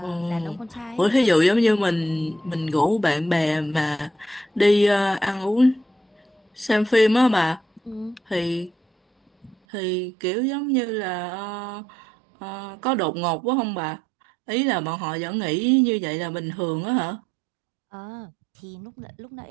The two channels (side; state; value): left; drops out; at 9.6 s